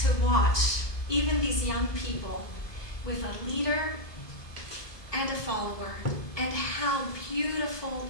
watch even these young people with a leader and a follower, and how beautiful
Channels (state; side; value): late; right; 1.2 ms